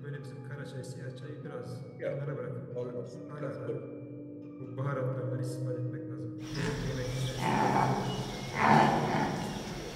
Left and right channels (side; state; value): both; identical; correlation 1.00